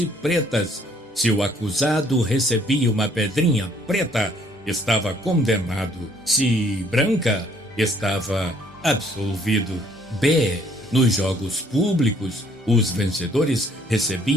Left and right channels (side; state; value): both; normal; correlation 0.63